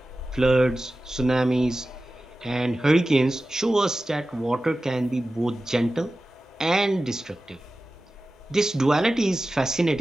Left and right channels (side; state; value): both; normal; correlation 0.95